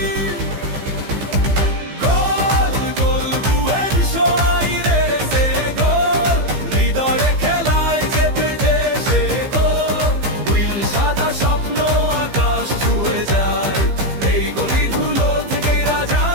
গোল গোল বুয়েন্স আইরেসে গোল, হৃদয়ে খেলায় যেতে যে সে গোল। নীল সাদা স্বপ্ন আকাশ ছুঁয়ে যায়, এই গলি ধুলো থেকেই রাজা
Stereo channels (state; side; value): late; left; 15 ms